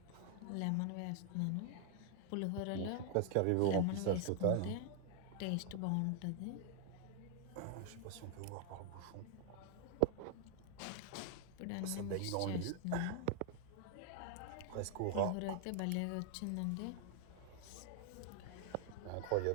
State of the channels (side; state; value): both; different; correlation 0.00